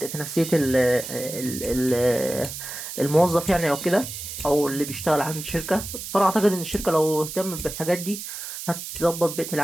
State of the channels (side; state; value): right; noise; hiss, 8 dB below the sound